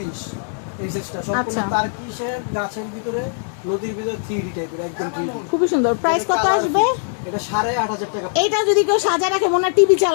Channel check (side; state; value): right; silent; digital silence